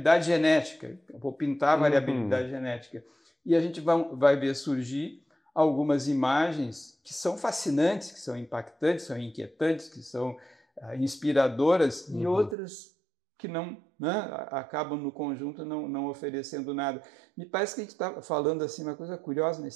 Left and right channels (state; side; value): drops out; left; at 12.6 s